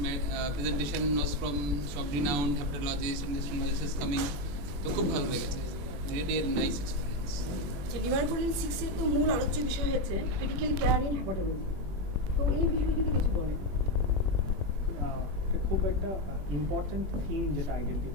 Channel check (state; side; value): late; left; 21 ms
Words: presentation was from সব renowned hepatologist and gastroenterologist coming. তো খুব ভালো লেগেছে, really a nice experience. Livercon 6 এর তো মূল আলোচ্য বিষয় হচ্ছে ক্রিটিক্যাল কেয়ার ইন হ্যাপাটোলজি। তো এই বিষয়ে যদি কিছু বলেন। খুব একটা ইম্পর্ট্যান্ট থিম যেটা